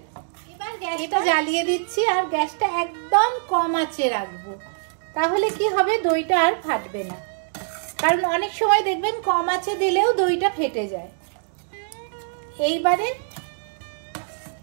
এবার গ্যাসটা জ্বালিয়ে দিচ্ছি আর গ্যাসটা একদম কম আঁচে রাখবো, তাহলে কি হবে দইটা আর ফাটবে না। কারণ অনেক সময় দেখবেন কম আঁচে দিলেও দইটা ফেটে যায়। এইবারে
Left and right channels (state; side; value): silent; left; digital silence